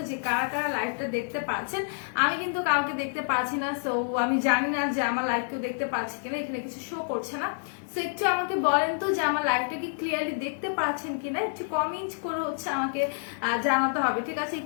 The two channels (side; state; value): right; silent; digital silence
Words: যে কারা কারা লাইভটা দেখতে পাচ্ছেন। আমি কিন্তু কাউকে দেখতে পাচ্ছি না, সো আমি জানি না যে আমার লাইভ কেউ দেখতে পাচ্ছি কিনা, এখানে কিছু শো করছে না। সো একটু আমাকে বলেন তো যে আমার লাইভটা কি ক্লিয়ারলি দেখতে পাচ্ছেন কিনা, একটু কমেন্ট করে হচ্ছে আমাকে জানাতে হবে, ঠিক আছে?